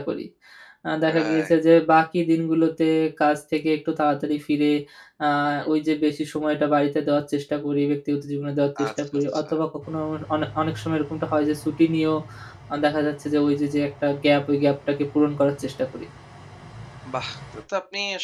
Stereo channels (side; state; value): both; identical; correlation 1.00